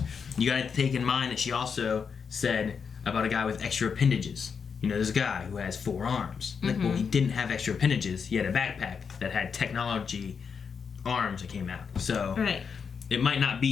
you got to take in mind that she also said about a guy with extra appendages. You know, there's a guy who has 4 arms. Like, well, he didn't have extra appendages. He had a backpack that had technology arms that came out. So it might not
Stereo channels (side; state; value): right; quieter; 6.2 dB